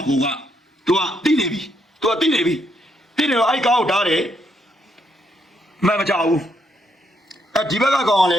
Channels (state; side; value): normal; both; correlation 0.76